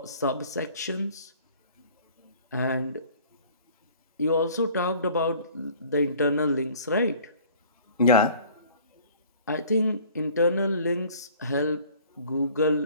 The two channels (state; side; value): inverted; both; correlation -0.51